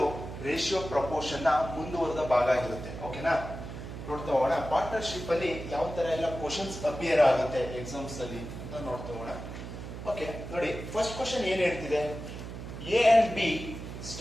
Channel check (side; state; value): right; noise; hum, 9 dB below the sound